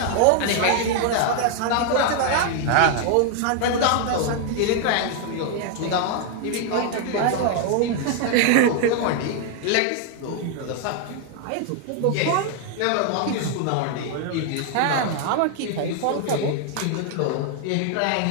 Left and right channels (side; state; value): both; different; correlation 0.00